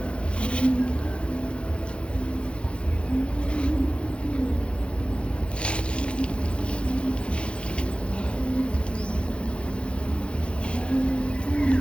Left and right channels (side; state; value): right; late; 0.057 ms